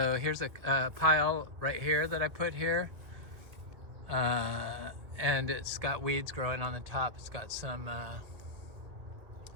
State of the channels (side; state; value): left; late; 1.9 ms